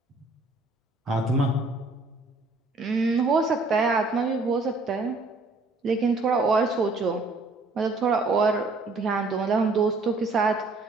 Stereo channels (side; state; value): left; quieter; 3.3 dB